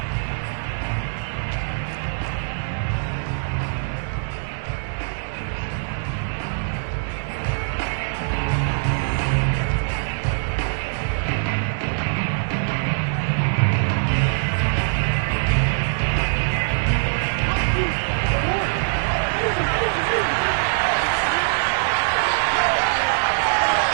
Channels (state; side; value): silent; left; digital silence